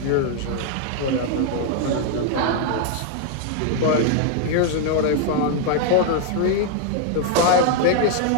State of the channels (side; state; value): both; different; correlation 0.00